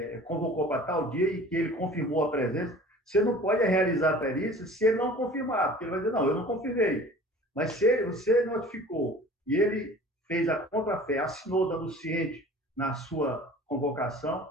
convocou para tal dia e que ele confirmou a presença. Você não pode realizar a perícia se ele não confirmar, porque ele vai dizer, não, eu não confirmei. Mas se você notificou e ele fez a contrafé, assinou dando ciente na sua convocação,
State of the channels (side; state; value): both; normal; correlation 0.45